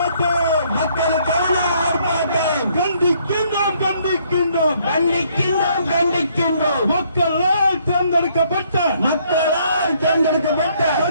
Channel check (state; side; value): inverted; both; correlation -0.67